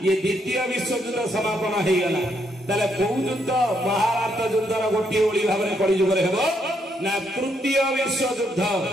ये द्वितीय विश्व युद्ध समापन हो गला ताले कौ युद्ध महाभारत युद्धर गोटे ओली भाव में कली जुग ना तृतीय विश्व युद्ध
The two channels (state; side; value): normal; both; correlation 0.75